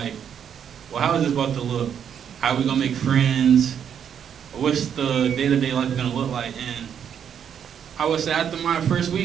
well, how is this about to look? How are we gonna make friends? What's the day-to-day life gonna look like? And I would say after my first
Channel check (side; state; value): left; quieter; 8.4 dB